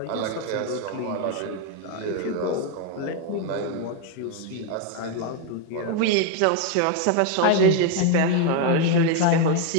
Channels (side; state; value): both; different; correlation 0.01